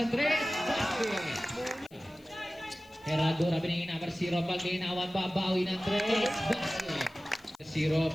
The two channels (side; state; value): left; noise; hiss, 30 dB below the sound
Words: 3. Basket. Herradura binigay number 0. Paglinawan. Babawi ng 3. Basket. 0.